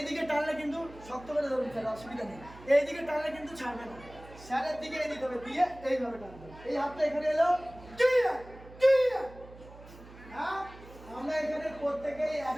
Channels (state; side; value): noise; right; hum, 19 dB below the sound